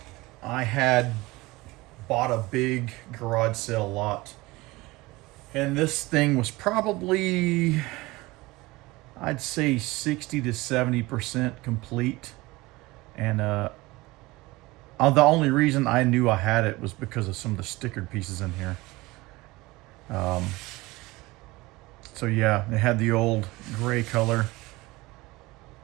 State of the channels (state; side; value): quieter; left; 21.1 dB